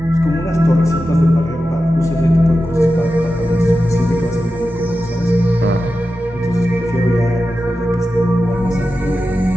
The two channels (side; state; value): both; normal; correlation 0.92